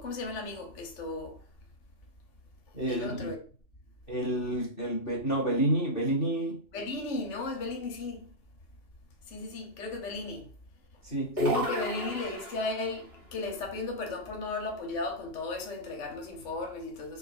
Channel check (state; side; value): late; right; 2.8 ms